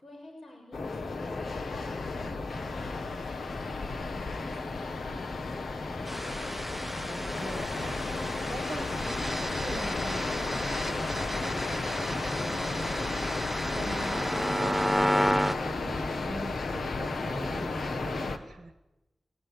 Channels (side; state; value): both; normal; correlation 0.93